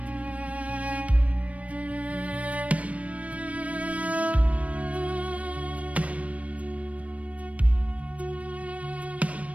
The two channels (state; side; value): late; left; 0.066 ms